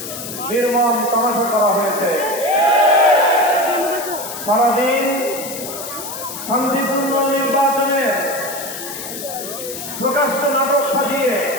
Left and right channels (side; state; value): left; noise; hiss, 9 dB below the sound